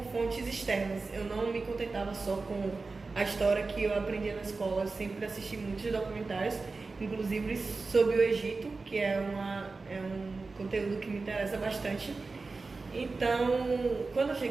fontes externas. Eu não me contentava só com a história que eu aprendia na escola, eu sempre assisti muitos documentários inclusive sobre o Egito, que é um conteúdo que me interessa bastante. Então, quando eu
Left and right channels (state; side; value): quieter; left; 3.9 dB